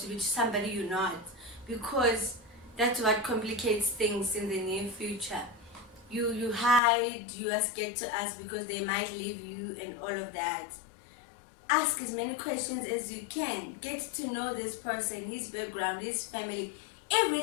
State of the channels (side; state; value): right; drops out; at 6.8 s